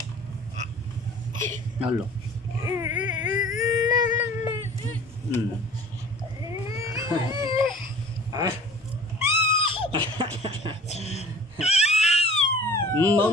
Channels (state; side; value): normal; both; correlation 0.45